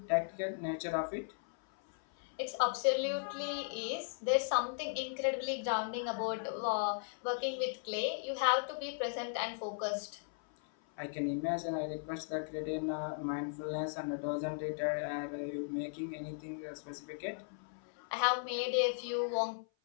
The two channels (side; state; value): right; silent; 53 dB below the other